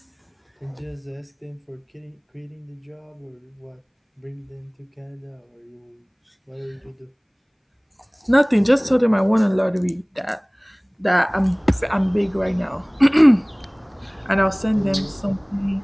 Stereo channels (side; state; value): both; identical; correlation 1.00